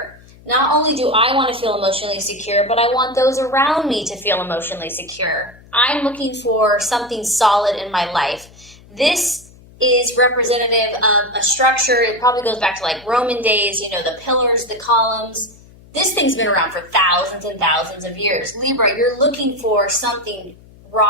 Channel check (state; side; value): noise; left; hum, 24 dB below the sound